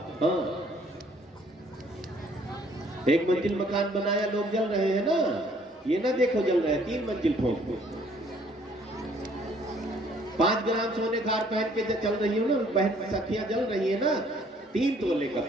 हाँ, एक मंजिल मकान बनाया, लोग जल रहे हैं ना, ये ना देखो जल रहे हैं, 3 मंजिल ठोक। 5 ग्राम सोने का हार पहन के चल रही हो ना, बहन सखियां जल रही है ना, 3 तोले का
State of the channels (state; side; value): normal; both; correlation 0.61